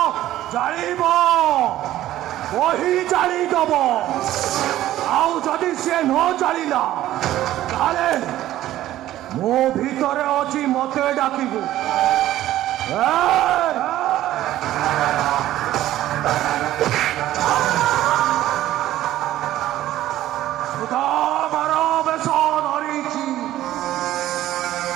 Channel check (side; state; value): left; quieter; 14.0 dB